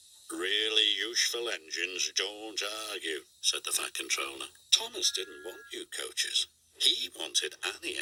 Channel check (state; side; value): identical; both; correlation 1.00